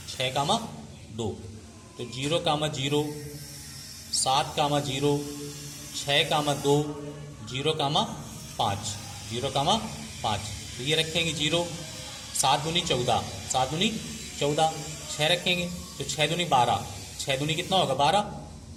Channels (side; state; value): both; identical; correlation 1.00